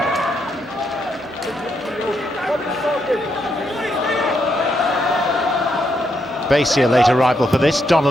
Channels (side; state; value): both; normal; correlation 0.79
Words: Basie, a late arrival for this.